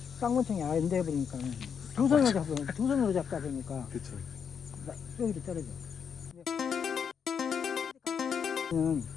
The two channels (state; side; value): quieter; right; 7.0 dB